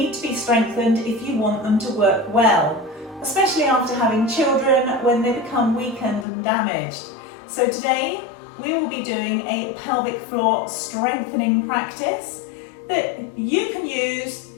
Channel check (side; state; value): right; drops out; at 6.2 s